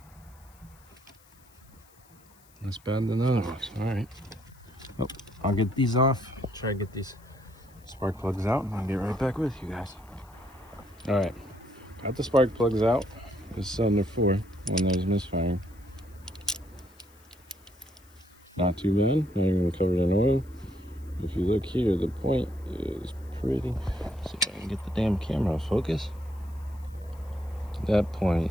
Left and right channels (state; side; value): noise; left; hiss, 29 dB below the sound